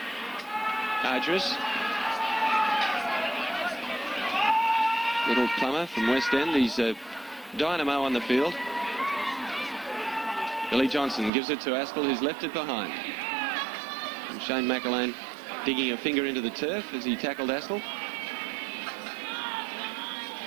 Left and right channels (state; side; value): drops out; left; at 11.3 s